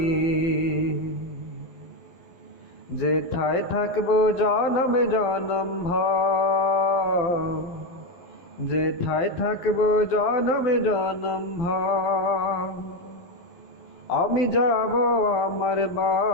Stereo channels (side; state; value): right; late; 12 ms